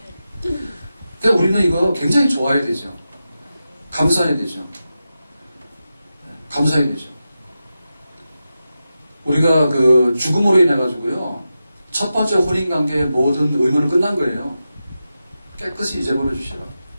그러니까 우리는 이거 굉장히 좋아해야 되죠. 감사해야 되죠. 감사해야 되죠. 우리가 그 죽음으로 인해가지고요, 첫 번째 혼인관계의 모든 의무는 끝난 거예요. 깨끗이 잊어버려 주시라.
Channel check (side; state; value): both; inverted; correlation -0.91